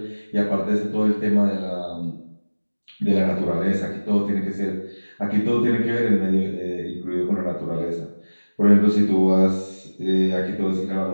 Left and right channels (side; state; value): both; inverted; correlation -1.00